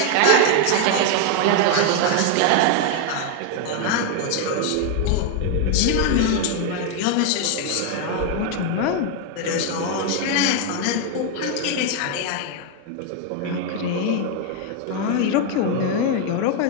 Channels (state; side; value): different; both; correlation 0.01